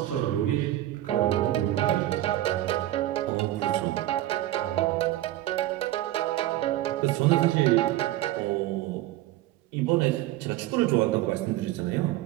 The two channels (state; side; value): quieter; left; 15.0 dB